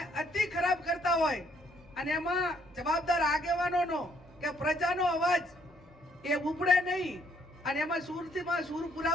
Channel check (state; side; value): normal; both; correlation 0.68